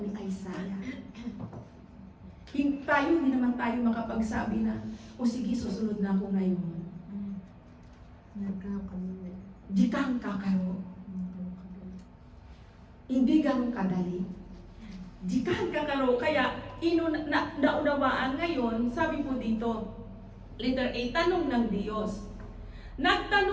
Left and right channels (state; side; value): identical; both; correlation 1.00